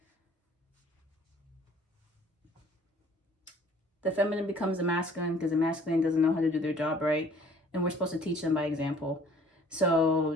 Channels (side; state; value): both; normal; correlation 0.54